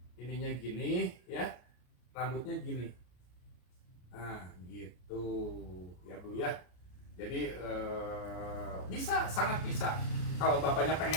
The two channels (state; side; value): late; right; 33 ms